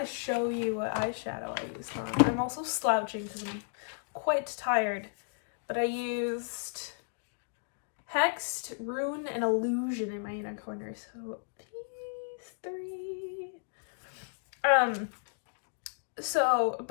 show you what eyeshadow I used on. I'm also slouching because I'm quite tired. But I used Hexed, Rune, and Illusion in my inner corner. So these three.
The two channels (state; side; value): silent; right; digital silence